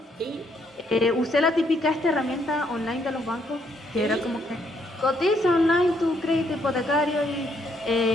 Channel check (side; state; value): both; normal; correlation 0.72